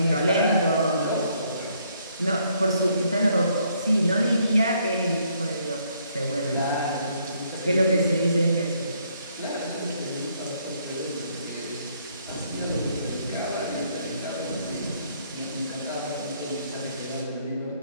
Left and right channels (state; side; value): inverted; both; correlation -0.69